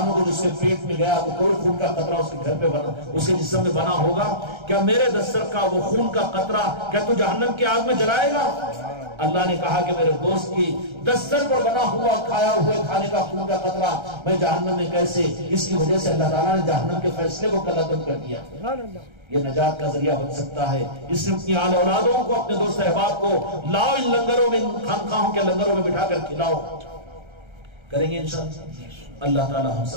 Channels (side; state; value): left; late; 1.3 ms